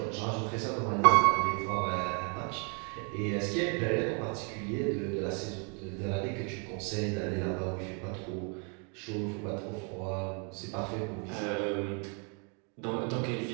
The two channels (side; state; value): left; quieter; 36.8 dB